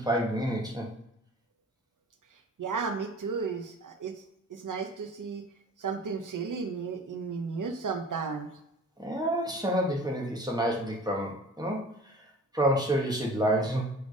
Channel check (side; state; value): both; normal; correlation 0.43